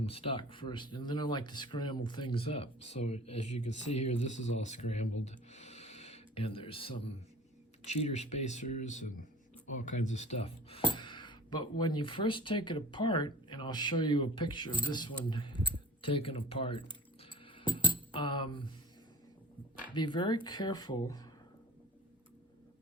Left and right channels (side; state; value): both; normal; correlation 0.40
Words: stock first, and then I like to scramble things up. So as you can see here, this is all scrambled, and there's some cheater spacers and all kinds of stuff. But when you first take it apart, and I'll show you a picture of this one taken apart, be very careful